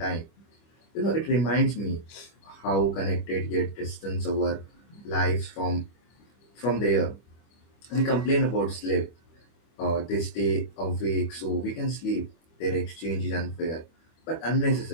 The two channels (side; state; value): right; late; 25 ms